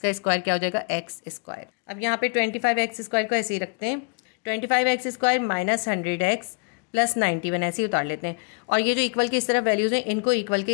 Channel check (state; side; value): quieter; right; 36.2 dB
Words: स्क्वायर क्या हो जाएगा x²। अब यहाँ पे 25x² को ऐसे ही रखते हैं, 25x² माइनस 100x प्लस 91 ऐसे ही उतार लेते हैं। और ये जो इक्वल के इस तरफ वैल्यूज हैं इनको इक्वल के